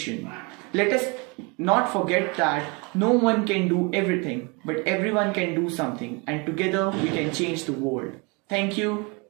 Let us not forget that no one can do everything, but everyone can do something, and together we can change the world. Thank you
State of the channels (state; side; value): quieter; left; 29.9 dB